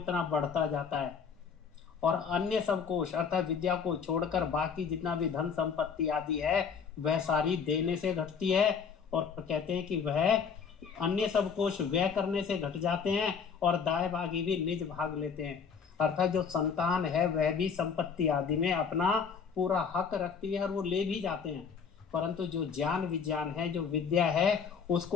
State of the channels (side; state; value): right; quieter; 6.3 dB